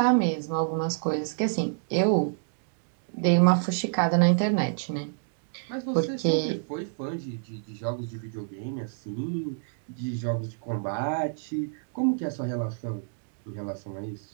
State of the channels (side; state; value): left; silent; digital silence